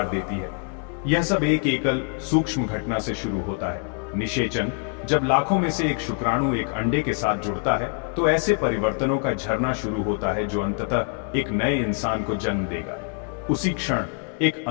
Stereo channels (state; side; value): quieter; right; 39.7 dB